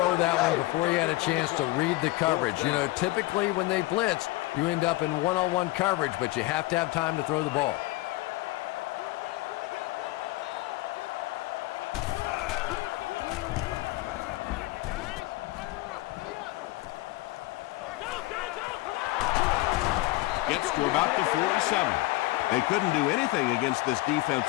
that one before he had a chance to read the coverage. You know, typically when they blitz, you end up in one-on-one coverage, but you have to have time to throw the ball. Gets to about the 47. They couldn't do anything against this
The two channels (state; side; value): quieter; right; 19.5 dB